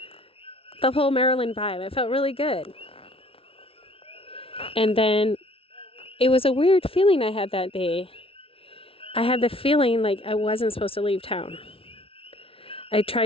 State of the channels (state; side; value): late; right; 0.26 ms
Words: the whole Marilyn vibe. I felt really good. And then it was a weird feeling I had that day. I had the feeling like I wasn't supposed to leave town. I